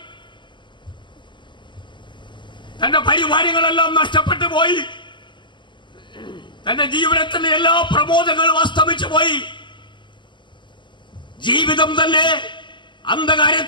തന്റെ പരിവാരങ്ങളെല്ലാം നഷ്ടപ്പെട്ടു പോയി, തന്റെ ജീവിതത്തിന്റെ എല്ലാ പ്രബോധങ്ങളും അസ്തമിച്ചു പോയി. ജീവിതം തന്നെ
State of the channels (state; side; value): late; right; 0.23 ms